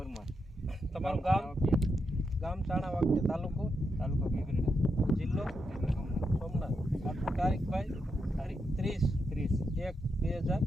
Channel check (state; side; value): normal; both; correlation 0.84